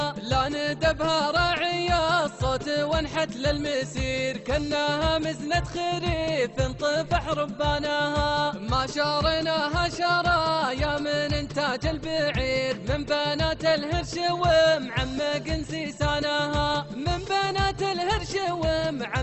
لا ندبها راعية الصوت وانحت للمسير، كأنها مزنة خريف طفح ربانها، ما شارناها شرايا من انتاج البعير، من بنات الهرش ومعمق سيسانها، من بنات الهرش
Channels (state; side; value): identical; both; correlation 1.00